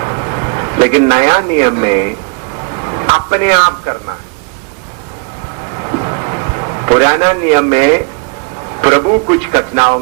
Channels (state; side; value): quieter; left; 33.2 dB